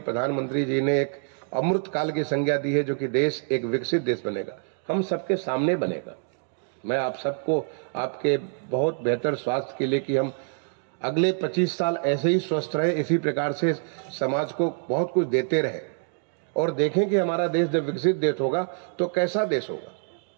जी ने एक अमृत काल की संज्ञा दी है, जो कि देश एक विकसित देश बनेगा, हम सबके सामने बनेगा। मैं आप सबको आपके बहुत बेहतर स्वास्थ्य के लिए कि हम अगले 25 साल ऐसे ही स्वस्थ रहे, इसी प्रकार से समाज को बहुत कुछ देते रहे और देखें कि हमारा देश जब विकसित देश होगा तो कैसा देश होगा,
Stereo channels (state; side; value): silent; left; 61 dB below the other